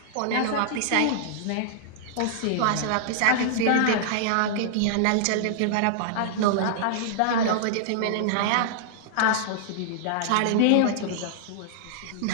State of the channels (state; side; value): different; both; correlation -0.01